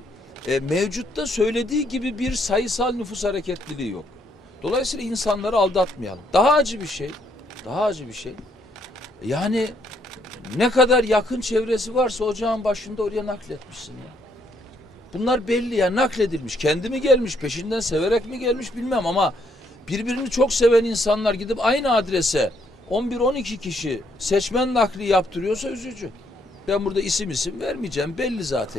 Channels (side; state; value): both; normal; correlation 0.71